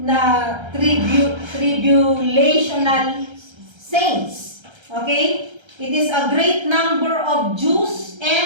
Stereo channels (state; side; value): late; left; 1.3 ms